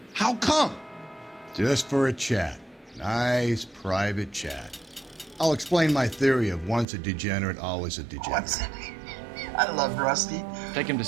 How come? Just for a chat. Nice private chat. I'll explain my theory of once a degenerate, always a degenerate. I love Rusty. Take him to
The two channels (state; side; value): drops out; left; at 6.9 s